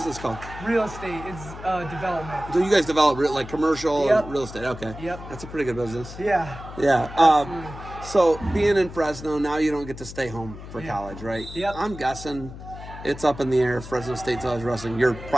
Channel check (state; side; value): noise; left; hum, 13 dB below the sound